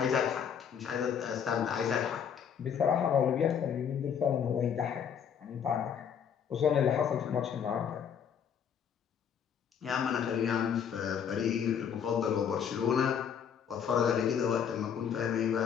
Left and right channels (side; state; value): right; quieter; 7.9 dB